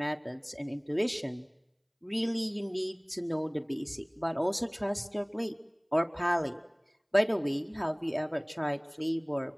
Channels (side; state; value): both; identical; correlation 1.00